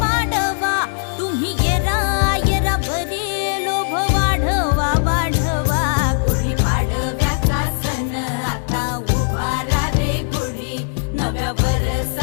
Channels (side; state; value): right; silent; digital silence